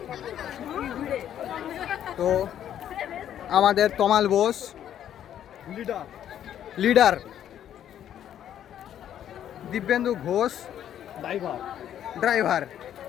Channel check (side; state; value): right; quieter; 10.4 dB